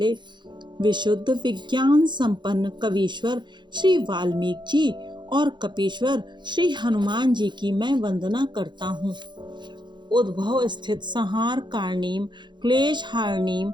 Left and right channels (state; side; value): late; left; 0.22 ms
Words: विशुद्ध विज्ञान संपन्न कवीश्वर श्री वाल्मीकि जी और कपीश्वर श्री हनुमान जी की मैं वंदना करता हूँ। उद्भव स्थित संहार कारणीम क्लेश हारणीम